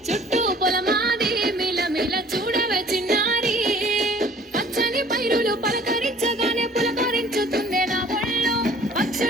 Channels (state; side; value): normal; both; correlation 0.52